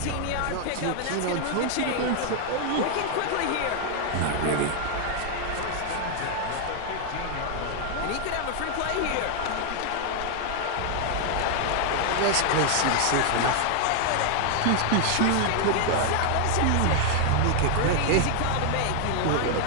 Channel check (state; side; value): different; both; correlation 0.00